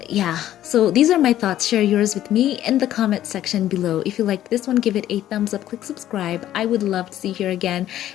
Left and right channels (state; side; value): quieter; right; 12.5 dB